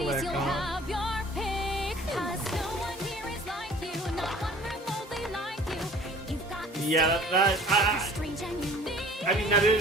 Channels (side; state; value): both; normal; correlation 0.48